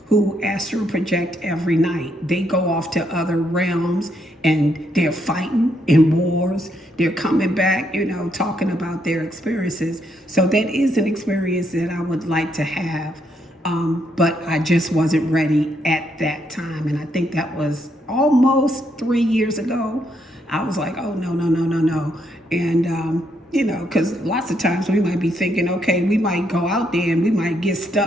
who astral project every night. They go off to other realms and they're fighting in wars. They're coming back, talking about their experiences. So that is an experience that I would like to have. But I just wasn't ready at that time. And I think that was almost 3 years ago. I was like, oh, no, no, no, no, no. And, because lots of times we might be thinking, okay, we might go out there and we might get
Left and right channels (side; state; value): both; normal; correlation 0.76